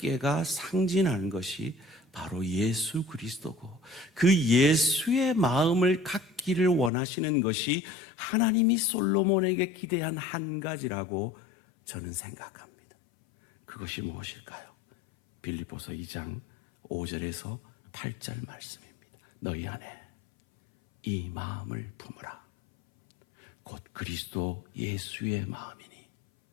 상징하는 것이 바로 예수 그리스도고, 그 예수의 마음을 갖기를 원하시는 것이 하나님이 솔로몬에게 기대한 한 가지라고 저는 생각합니다. 그것이 무엇일까요? 빌립보서 2장 5절에서 8절 말씀입니다. 너희 안에 이 마음을 품으라. 곧 그리스도 예수의 마음이니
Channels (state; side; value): drops out; right; at 6.9 s